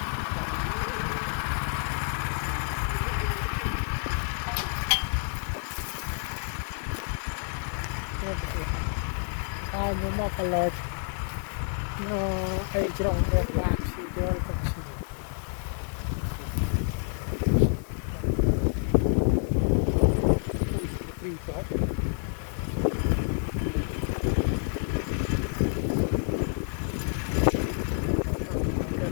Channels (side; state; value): right; silent; 56 dB below the other